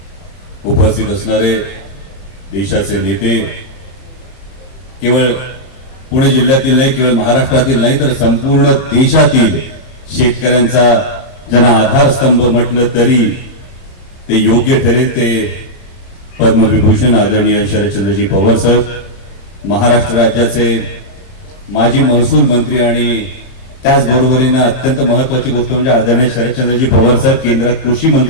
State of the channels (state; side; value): late; right; 30 ms